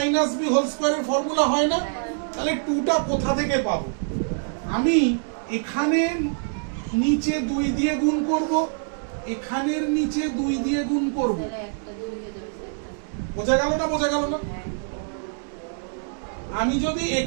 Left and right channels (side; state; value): left; silent; digital silence